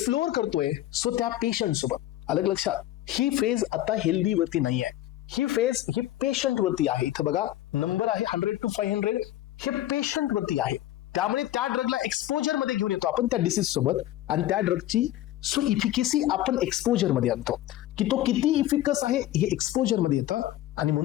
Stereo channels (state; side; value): quieter; right; 14.0 dB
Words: करतोय, सो त्या पेशंट सोबत. अलग लक्षात, ही फेज आता हेल्दी वरती नाही आहे, ही फेज ही पेशंट वरती आहे. इथं बघा नंबर आहे 100 to 500, हे पेशंट वरती आहे. त्यामुळे त्या ड्रगला एक्सपोजर मध्ये घेऊन येतो आपण त्या डिसीज सोबत, आणि त्या ड्रगची सो इफिकेसी आपण एक्सपोजर मध्ये आणतो की तो किती इफिकस आहे हे एक्सपोजर मध्ये येतं. आणि